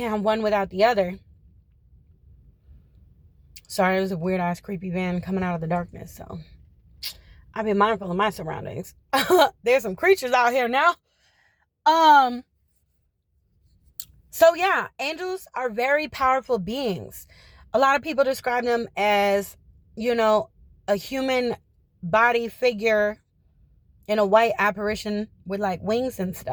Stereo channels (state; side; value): identical; both; correlation 1.00